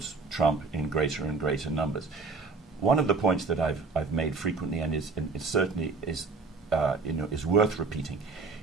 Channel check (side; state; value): left; quieter; 4.2 dB